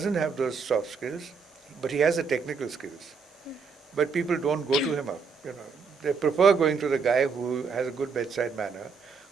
have those soft skills, but he has the technical skills. But people don't go to him up. They prefer going to the guy who has a good bedside manner,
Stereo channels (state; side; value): quieter; left; 5.3 dB